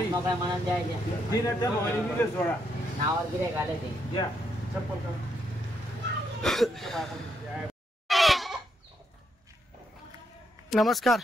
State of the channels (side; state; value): both; normal; correlation 0.78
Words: काय म्हणून द्यायचे तीन त्या मोबाईल दिले सोडा नावावर गिरे घाले ते द्या चप्पल कर. नमस्कार.